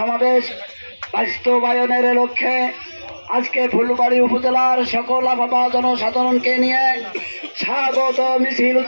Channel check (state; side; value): inverted; both; correlation -1.00